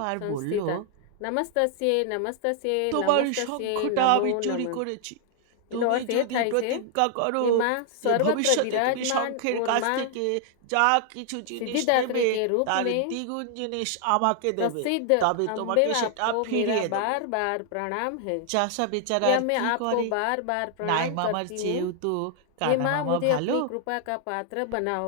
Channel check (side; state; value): both; different; correlation 0.00